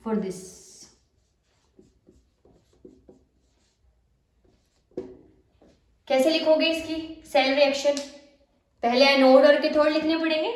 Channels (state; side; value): identical; both; correlation 1.00